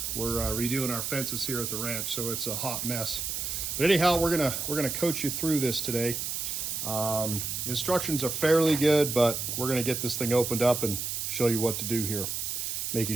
We're redoing our fences here at the ranch, so it's a hot mess. But anyhow, we're gonna coach you through this today. Instructions are fairly good, but we're gonna get this thing opened up and show you what to do here. Make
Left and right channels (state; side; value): noise; right; hiss, 3 dB below the sound